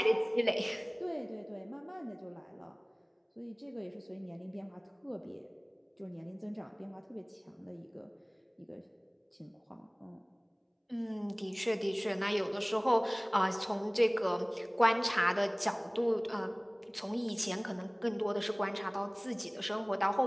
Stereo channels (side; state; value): both; identical; correlation 1.00